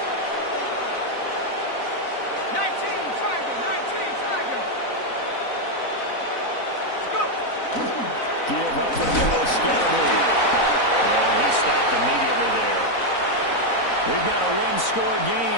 Give up the middle, Scalaboo. And he stopped immediately there. We've got a one-score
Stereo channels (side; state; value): right; late; 4.0 ms